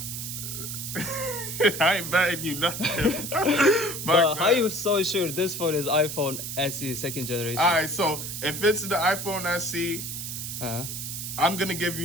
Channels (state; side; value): noise; right; hiss, 6 dB below the sound